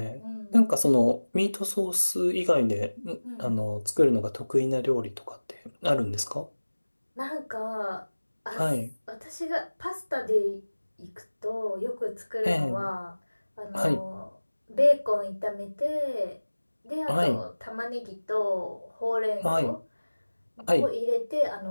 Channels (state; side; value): inverted; both; correlation -1.00